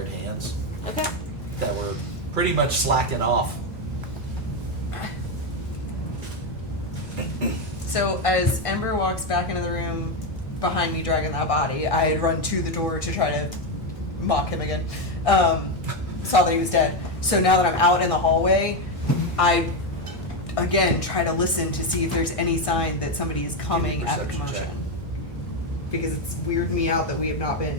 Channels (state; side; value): normal; both; correlation 0.08